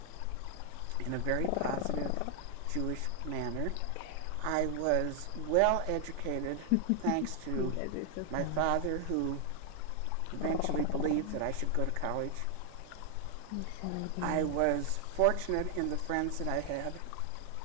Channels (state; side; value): different; both; correlation 0.00